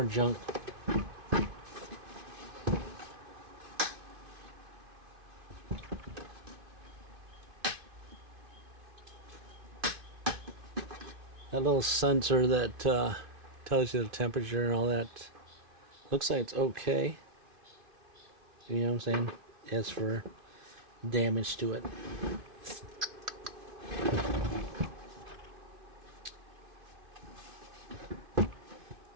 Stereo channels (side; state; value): left; late; 2.5 ms